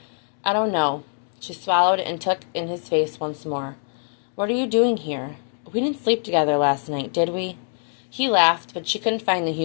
"I don't know." She swallowed and took in his face once more. "What are you doing here? We didn't sleep together last night, did we?" He laughed, but she couldn't find the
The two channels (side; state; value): right; silent; digital silence